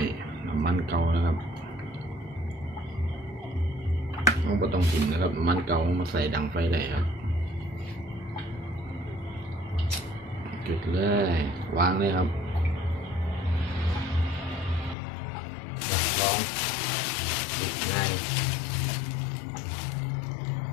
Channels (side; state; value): right; drops out; at 15.0 s